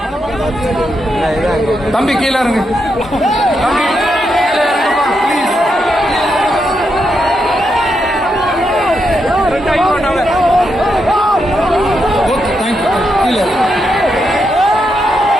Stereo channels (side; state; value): both; normal; correlation 0.82